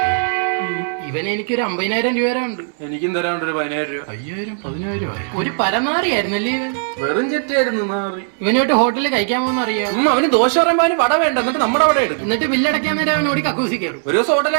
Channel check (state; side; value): silent; left; 66 dB below the other